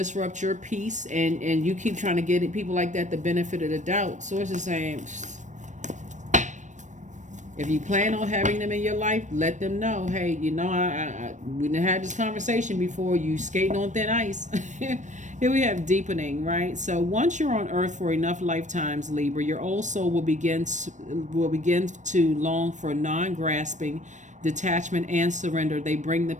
your peace, and you keep trying to get people like that the benefit of the doubt. Source is saying, if you plan on having them in your life, let them know, hey, we done had this conversation before, you skating on thin ice. Here we have deepening, right? So once you're on earth for enough lifetimes, Libra, your old soul will begin to long for non-grasping, detachment, and surrender. They bring the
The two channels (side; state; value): left; late; 0.35 ms